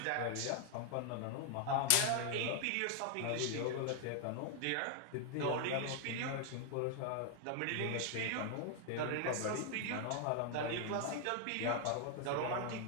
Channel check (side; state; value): both; different; correlation 0.00